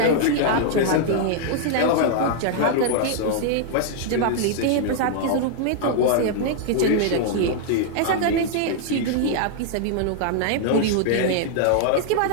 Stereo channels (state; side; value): different; both; correlation -0.01